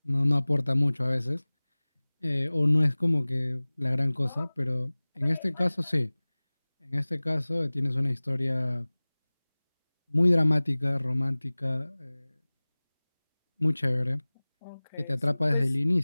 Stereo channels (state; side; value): inverted; both; correlation -1.00